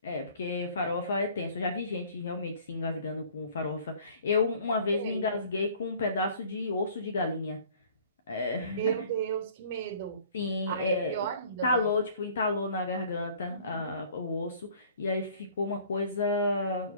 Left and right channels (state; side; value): inverted; both; correlation -0.52